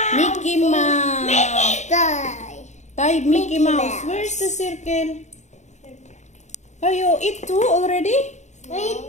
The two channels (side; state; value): right; late; 0.34 ms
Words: Mickey Mouse. Die. Type Mickey Mickey Mouse. Mouse. Where's the circle? Oh, you eat two already? I